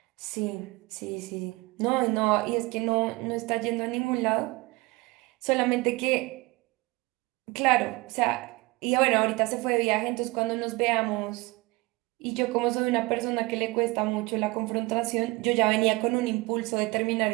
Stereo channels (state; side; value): quieter; left; 23.1 dB